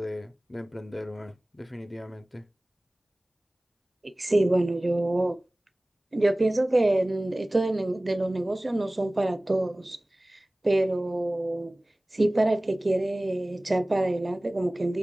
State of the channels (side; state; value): both; normal; correlation 0.98